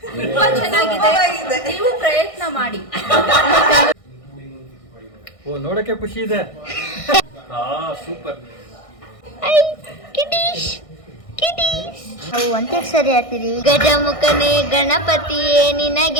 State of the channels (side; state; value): right; late; 1.6 ms